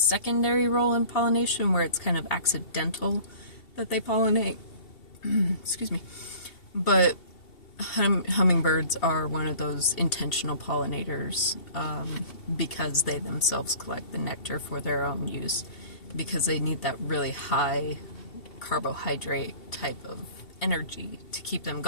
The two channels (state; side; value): late; right; 2.7 ms